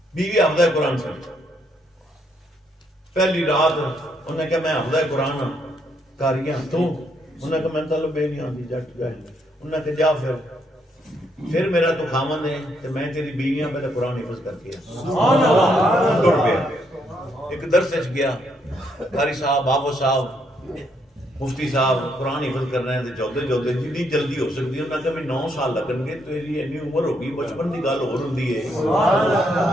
بیوی حافظ قرآن سے پہلی رات انہیں کہا میں حافظ قرآن ہوں کاریاں تو انہیں کہا میں تعلق بے نہیں آتی جٹ جاہل، انہیں کہا جا پھر میرا تو خامن ہے کہ میں تیری بیویاں پہلے قرآن حفظ کر کے ٹر پیا۔ ایک درس گیا، قاری صاحب بابو صاحب مفتی صاحب قرآن حفظ کر رہے ہیں، چودے جتنی جلدی ہو سکتی ہے، انہیں کہا بھی 9 سال لگن گے، تیری اینی عمر ہوگی، بچپن کی گل ہو رہی ہے۔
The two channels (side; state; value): both; normal; correlation 0.74